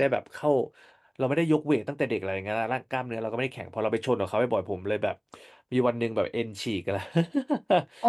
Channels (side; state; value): both; identical; correlation 1.00